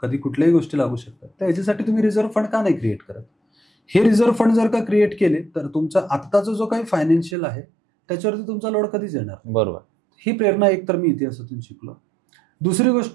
कुठल्याही गोष्टी लागू शकतात, तर ह्याच्यासाठी तुम्ही रिझर्व्ह फंड का नाही क्रिएट करत? हे रिझर्व्ह फंड जर का क्रिएट केले तर तुमचा आत्ताचा जो काही फायनान्शियल आहे त्याच्यावरती तुमचा लोड कधीच येणार. बरोबर. ही प्रेरणा एक तर मी इतिहासातून शिकलो. दुसरी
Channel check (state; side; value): drops out; left; at 7.4 s